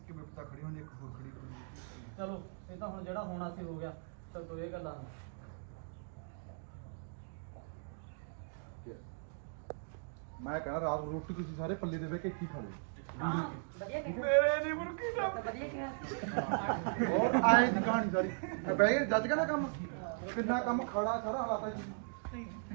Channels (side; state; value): left; silent; digital silence